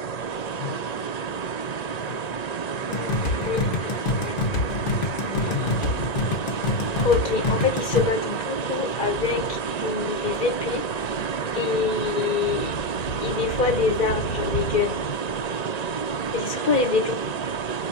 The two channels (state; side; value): late; right; 1.9 ms